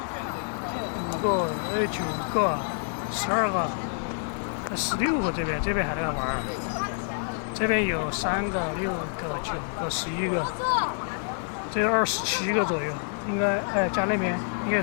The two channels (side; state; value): right; silent; 60 dB below the other